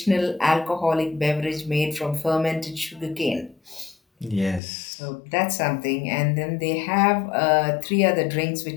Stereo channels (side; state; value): right; drops out; at 4.6 s